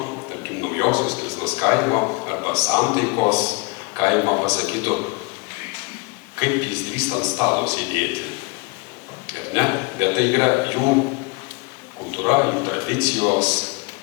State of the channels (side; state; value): right; quieter; 28.6 dB